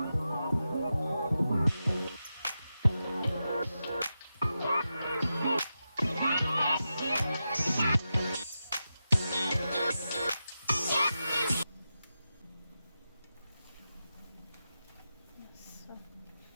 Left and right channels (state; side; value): inverted; both; correlation -0.90